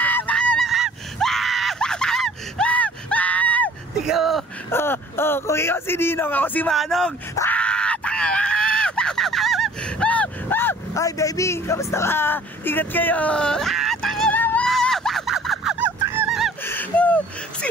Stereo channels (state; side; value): normal; both; correlation 0.52